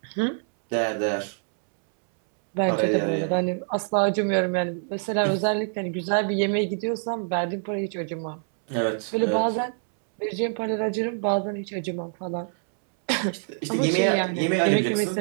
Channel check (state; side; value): silent; left; 61 dB below the other